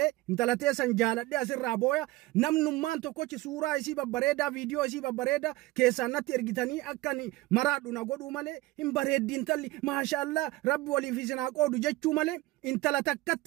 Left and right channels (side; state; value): left; quieter; 19.5 dB